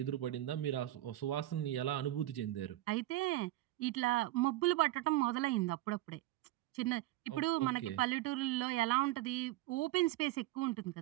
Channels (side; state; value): left; quieter; 16.0 dB